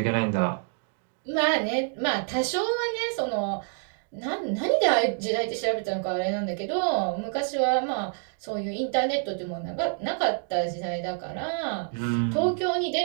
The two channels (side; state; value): left; silent; 60 dB below the other